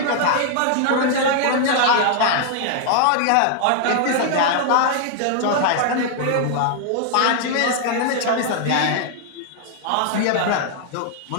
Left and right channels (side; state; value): both; different; correlation 0.00